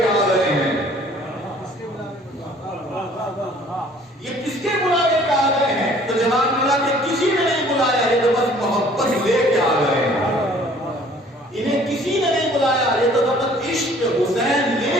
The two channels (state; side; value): normal; both; correlation 0.55